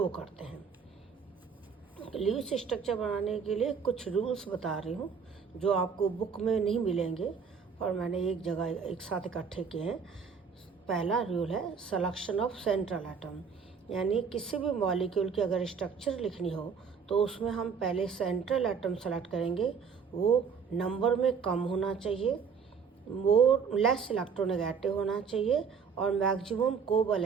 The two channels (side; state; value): left; quieter; 6.1 dB